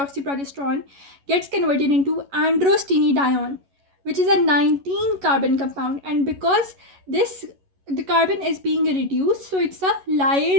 gets converted into androstenedione, which is a 19 carbon compound, and because the carbon is being reduced, so it's a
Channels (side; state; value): left; late; 11 ms